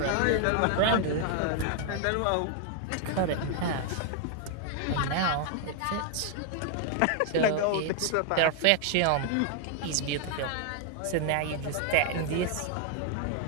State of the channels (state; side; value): different; both; correlation 0.00